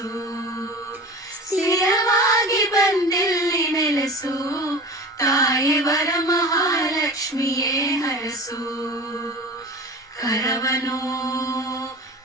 ಸ್ಥಿರವಾಗಿ ಬಂದಿಲ್ಲಿ ನೆಲೆಸು, ತಾಯಿ ವರಮಹಾಲಕ್ಷ್ಮಿಯೇ ಹರಸು. ಕರವನು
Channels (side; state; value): both; normal; correlation 0.35